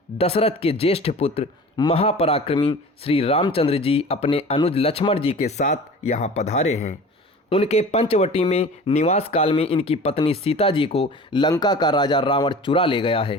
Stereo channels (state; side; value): normal; both; correlation 0.40